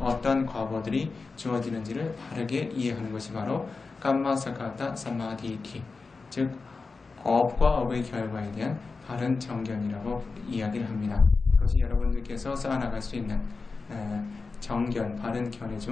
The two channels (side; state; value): right; quieter; 4.2 dB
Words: 과보들이 주어지는지를 바르게 이해하는 것이 바로 깜마사카타 사마디티 즉 업과 업의 결과에 대한 바른 정견이라고 이야기를 합니다. 그것이 여러분들께서 쌓아나갈 수 있는 정견, 바른 견해